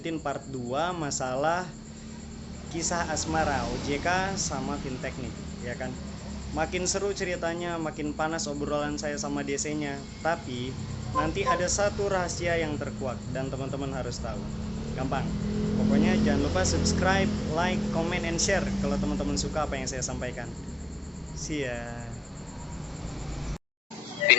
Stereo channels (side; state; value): both; normal; correlation 0.93